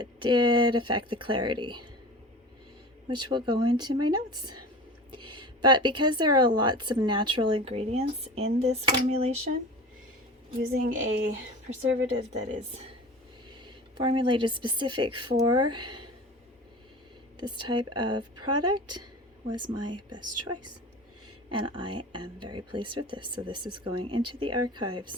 did affect the clarity, which will go into my notes. But because there are lots of natural ingredients in this formulation, using a preservative that is formulated specific for this type of product was my best choice. And I am very pleased with this. So this is going into the archives.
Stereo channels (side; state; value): both; normal; correlation 0.35